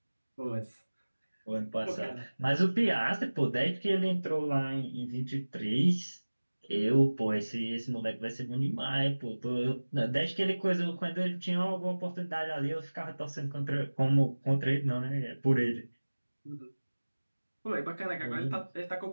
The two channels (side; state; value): both; inverted; correlation -1.00